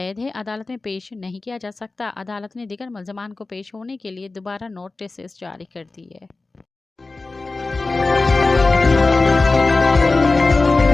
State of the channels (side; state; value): right; quieter; 3.5 dB